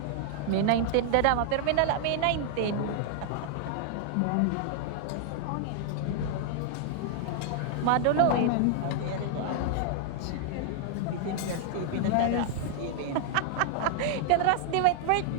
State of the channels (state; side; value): different; both; correlation -0.01